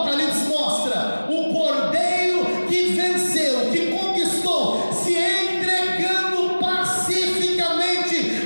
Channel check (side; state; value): both; inverted; correlation -1.00